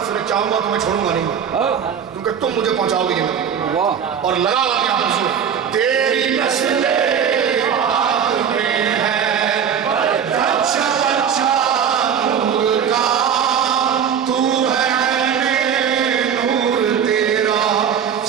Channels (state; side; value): quieter; left; 7.9 dB